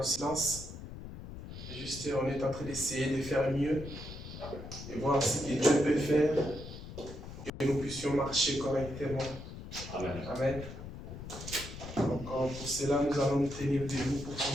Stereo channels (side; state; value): left; noise; rumble, 11 dB below the sound